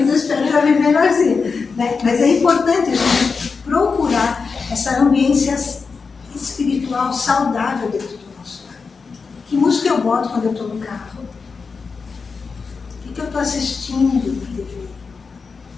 eu espero já viver melhorzinho. Né? Mas é importante a gente procurar essa ambiência espiritual saudável dentro do nosso lar. Que música eu boto quando eu estou no carro? O que eu estou assistindo na TV?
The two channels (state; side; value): quieter; right; 4.9 dB